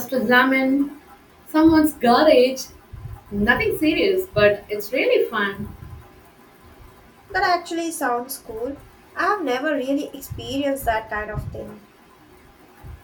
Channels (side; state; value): both; identical; correlation 1.00